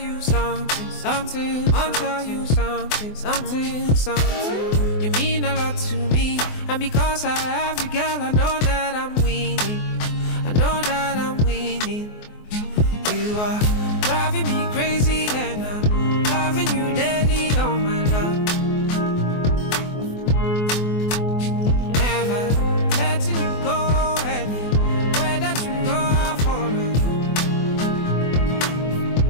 something, something. I want to tell you something, something, something. You mean a lot to me, and because I have you, girl, I know that I'm winning. I know that I'm winning. You are driving me crazy, and I'm loving you daily, oh my love. Never letting you go, anywhere that you go, I'll follow you.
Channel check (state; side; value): late; right; 24 ms